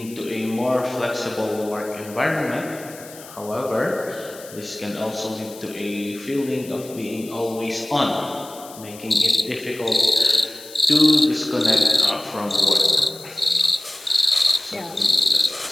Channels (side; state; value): left; noise; hiss, 18 dB below the sound